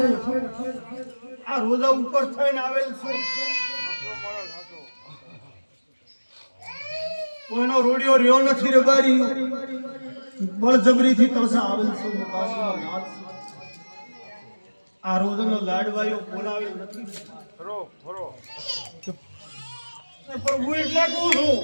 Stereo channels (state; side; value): inverted; both; correlation -1.00